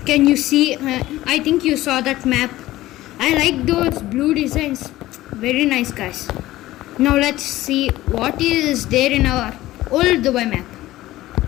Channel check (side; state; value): right; quieter; 16.3 dB